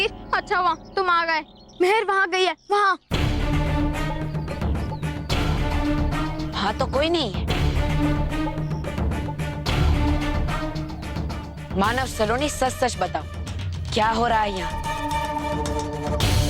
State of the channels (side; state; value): both; identical; correlation 1.00